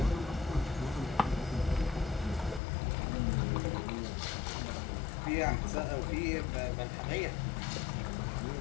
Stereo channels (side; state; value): right; drops out; at 2.6 s